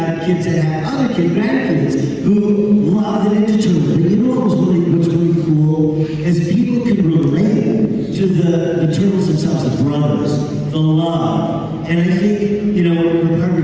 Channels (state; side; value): identical; both; correlation 1.00